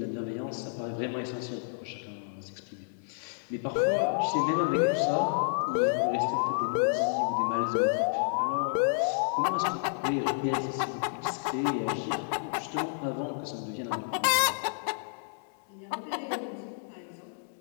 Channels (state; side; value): silent; right; digital silence